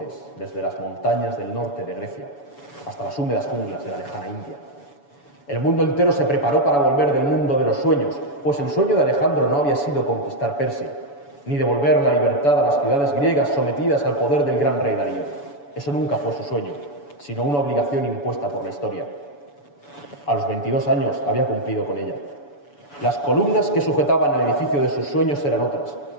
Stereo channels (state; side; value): late; right; 7.0 ms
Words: desde las montañas del norte de Grecia hasta las húmedas junglas de la lejana India. El mundo entero se preparó para volver del mundo de los sueños, pues el sueño de Alejandro no había sido conquistar Persia, ni devolver la libertad a las ciudades griegas sometidas al poder del gran rey Darío. Eso nunca fue su sueño, sino una obligación impuesta por la historia. A los 22 años había cumplido con ella. Las columnas que sujetaban el edificio de sus sueños eran otras: